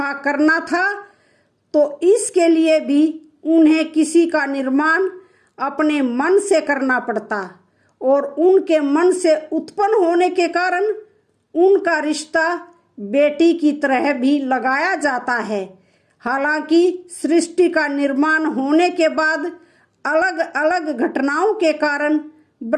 करना था तो इसके लिए भी उन्हें किसी का निर्माण अपने मन से करना पड़ता और उनके मन से उत्पन्न होने के कारण उनका रिश्ता बेटी की तरह भी लगाया जाता है। हालांकि सृष्टि का निर्माण होने के बाद अलग अलग घटनाओं के कारण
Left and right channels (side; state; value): both; identical; correlation 1.00